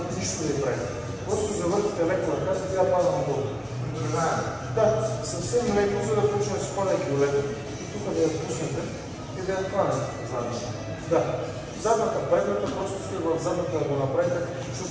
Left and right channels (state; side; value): identical; both; correlation 1.00